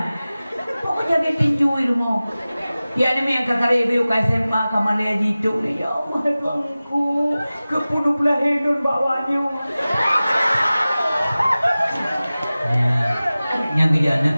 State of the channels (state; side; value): inverted; both; correlation -0.97